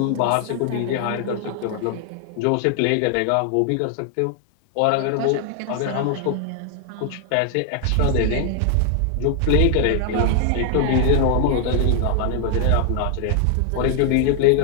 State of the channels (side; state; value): both; different; correlation 0.00